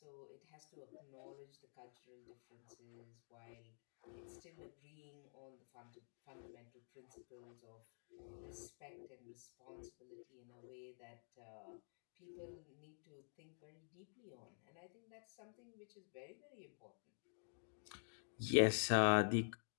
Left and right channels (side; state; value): right; silent; digital silence